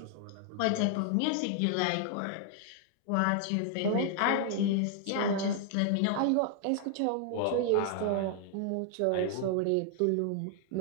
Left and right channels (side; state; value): both; different; correlation 0.00